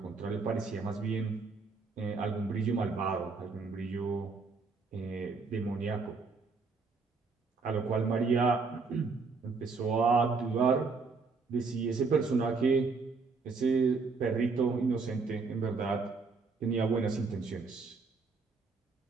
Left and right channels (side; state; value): left; quieter; 4.5 dB